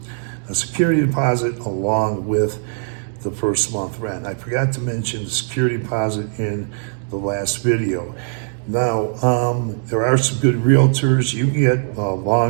a security deposit, along with the first month rent. I forgot to mention the security deposit in the last video. Now, there are some good realtors. You can get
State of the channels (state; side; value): silent; left; digital silence